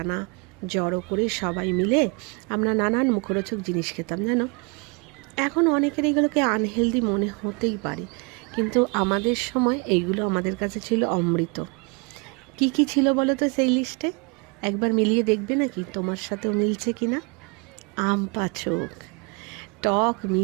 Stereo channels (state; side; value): quieter; left; 32.0 dB